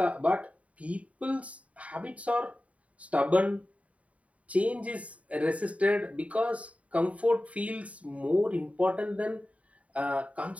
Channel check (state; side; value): late; left; 0.067 ms